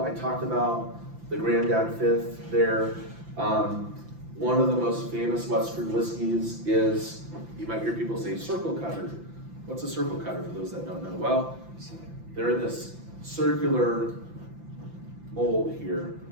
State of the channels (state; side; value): late; left; 5.9 ms